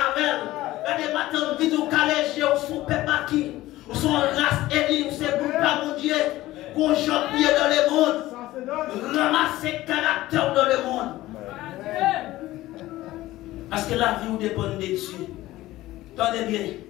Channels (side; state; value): right; quieter; 16.6 dB